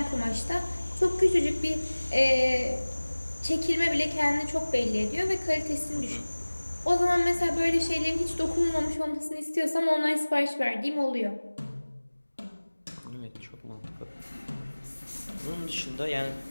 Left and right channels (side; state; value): both; inverted; correlation -1.00